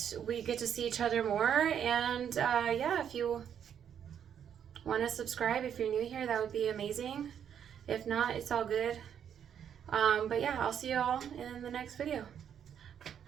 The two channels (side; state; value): left; quieter; 8.7 dB